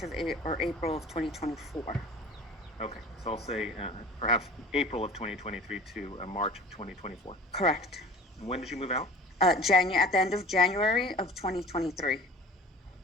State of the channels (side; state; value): both; normal; correlation 0.42